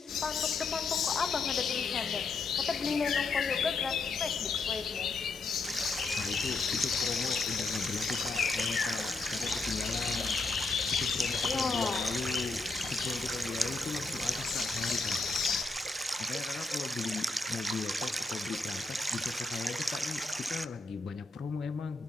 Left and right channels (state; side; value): quieter; right; 3.6 dB